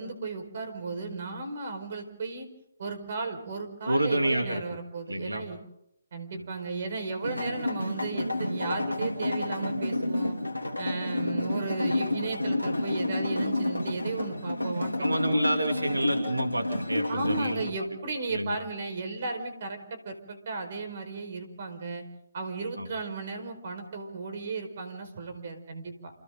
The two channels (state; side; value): inverted; both; correlation -0.86